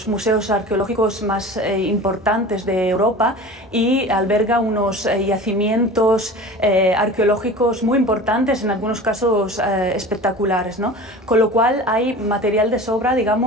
museos arqueológicos más importantes de Europa y alberga unos yacimientos arqueológicos muy importantes, en algunos casos espectaculares, ¿no? Con lo cual hay material de sobra,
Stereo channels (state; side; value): normal; both; correlation 0.37